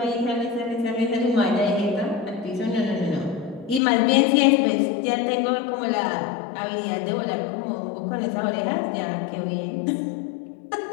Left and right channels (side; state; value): right; drops out; at 3.8 s